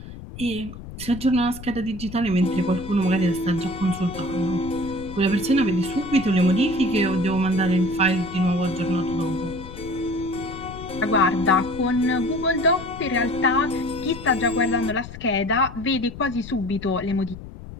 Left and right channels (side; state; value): left; noise; rumble, 13 dB below the sound